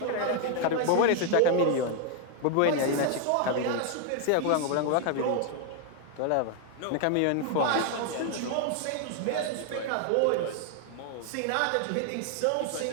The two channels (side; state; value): both; different; correlation 0.00